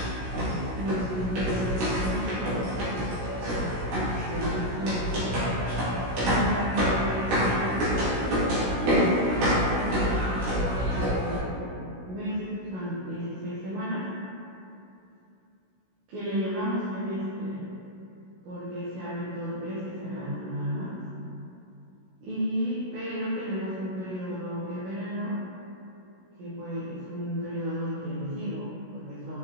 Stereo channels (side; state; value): left; late; 16 ms